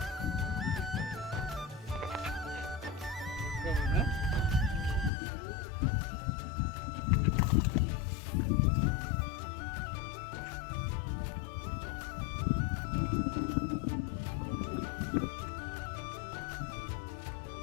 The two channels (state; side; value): drops out; right; at 5.1 s